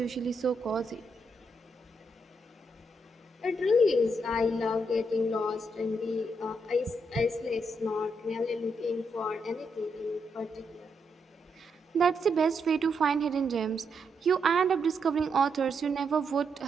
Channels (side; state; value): both; normal; correlation 0.80